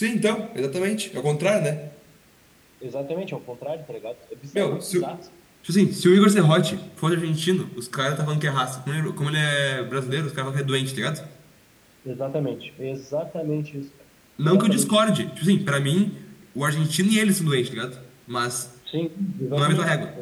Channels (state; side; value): identical; both; correlation 1.00